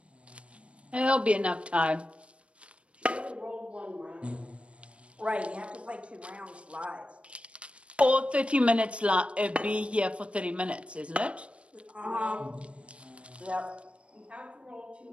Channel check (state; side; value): late; left; 0.060 ms